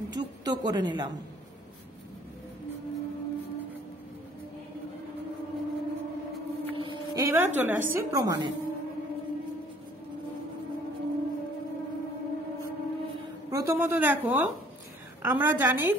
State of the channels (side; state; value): both; normal; correlation 0.57